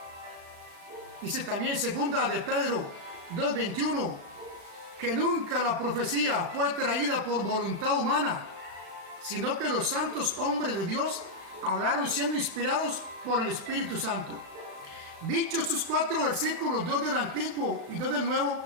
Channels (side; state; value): left; late; 36 ms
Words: Dice también segunda de Pedro 2:21, que nunca la profecía fue traída por voluntad humana, sino que los santos hombres de Dios hablaron siendo inspirados por el Espíritu Santo. Dichos estos 4 versículos, 2 del Antiguo y 2 del Nuevo,